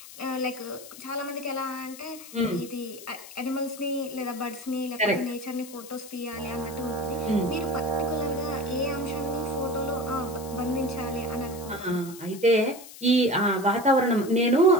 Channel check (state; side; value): noise; left; hiss, 16 dB below the sound